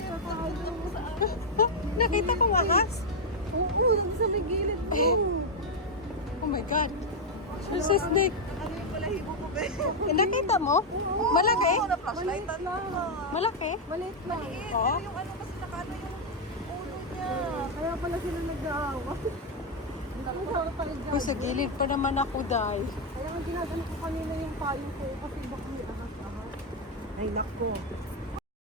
mo sa akin. Nakita kong ahas? Oo, yung sa may gilid. Oh my God! There's a snake! Ano yung balahibo ko ba? Eh, nakita mo? Malaki? Oo, na-flashlight lang. Malaki? Maliit lang. Oo. Yung ano kasi nakano yung ulo niya. Kaya pala sila nag-aawa. Uy, sa gilid pa naman ako, Day. Kaya nga ginagano ko kanina yung payo ko kasi baka may ahas-ahas. Ay, nako.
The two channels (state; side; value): normal; both; correlation 0.01